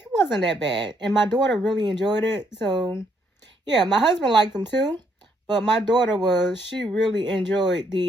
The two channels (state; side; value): normal; both; correlation 0.72